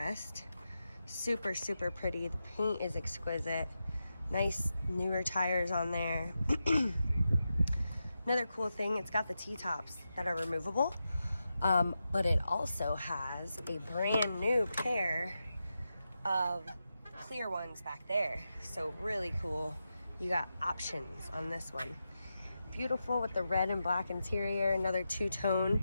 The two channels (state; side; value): inverted; both; correlation -0.89